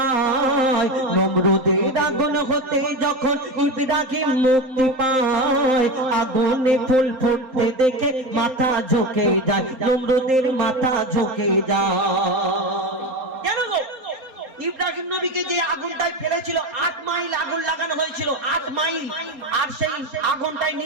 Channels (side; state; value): left; late; 3.8 ms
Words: নমরুদের আগুন হতে যখন ইব্রাহিম মুক্তি পায়। আগুনে ফুল ফুটতে দেখে মাথা ঝুঁকে যায়, নমরুদের মাথা ঝুঁকে যায়। কেন গো? ইব্রাহিম নবীকে যে আগুনটায় ফেলেছিল 8 মাইল আগুন লাগানো হয়েছিল, 8 মাইল। আর সেই আগুনটায়